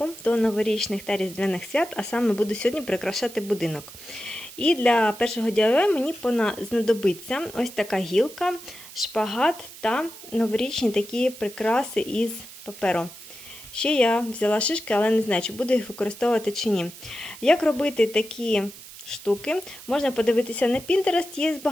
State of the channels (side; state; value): right; noise; hiss, 16 dB below the sound